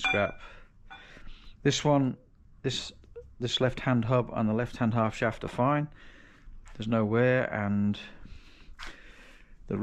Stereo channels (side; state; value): both; identical; correlation 1.00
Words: This one, this left hand hub and the left hand half shaft are fine. There's no wear, and the